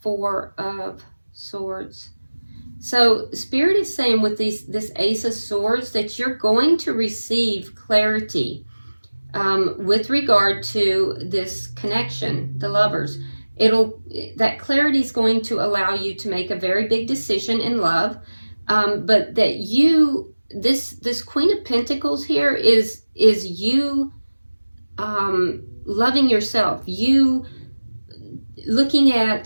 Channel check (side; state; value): both; inverted; correlation -1.00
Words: Four of Swords. So Spirit is saying with this Ace of Swords that you're going to receive clarity with regard to this connection, the Lovers. That clarity is going to allow you to make a very big decision in love, but that this Queen of Pentacles here is you loving yourself, you looking